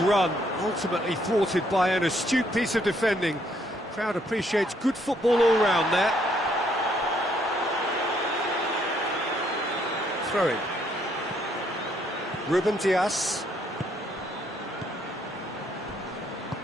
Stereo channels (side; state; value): both; normal; correlation 0.70